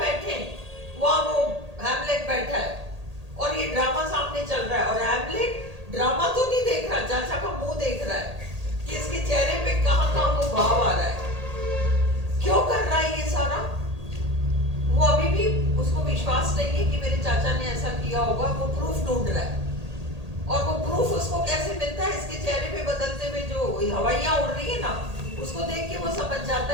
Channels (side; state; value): left; late; 1.8 ms